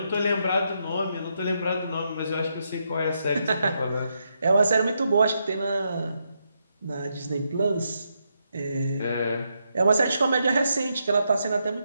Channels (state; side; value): inverted; both; correlation -0.81